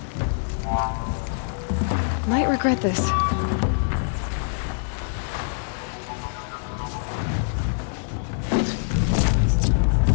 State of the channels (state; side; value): silent; right; digital silence